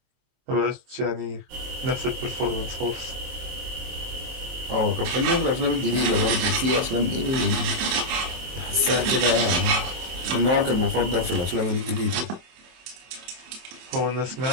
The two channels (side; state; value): left; late; 23 ms